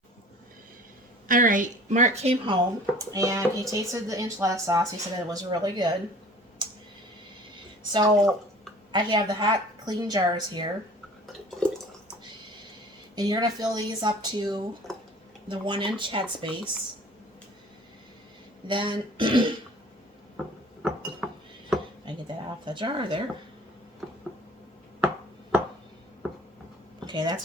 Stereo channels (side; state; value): both; normal; correlation 0.47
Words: All right, Mark came home and he tasted the enchilada sauce. He said it was really good. So I have the hot, clean jars here. And you're going to fill these up to the 1-inch headspace. Then, I get that off the jar there. Okay,